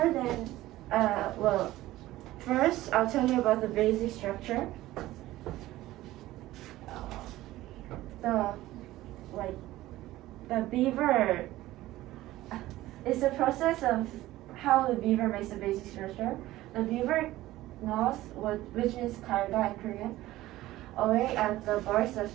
dams, first I'll tell you about the basic structure. The beaver is the process of how the beaver makes the basic structure. The beaver gnaws, which means karga in Korean, away at the barks of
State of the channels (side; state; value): left; quieter; 16.3 dB